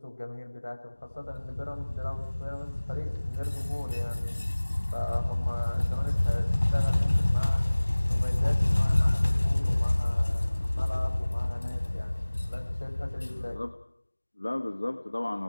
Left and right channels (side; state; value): both; inverted; correlation -1.00